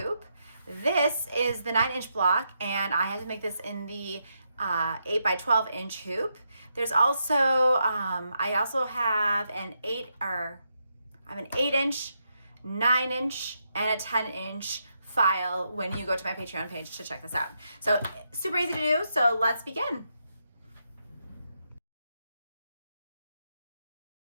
This is the 9-inch block and I had to make this in the 8x12-inch hoop. There's also, I also have an 8-inch, 9-inch, and a 10-inch file when you go to my Patreon page to check this out. So super easy to do, so let's begin.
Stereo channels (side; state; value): both; inverted; correlation -0.82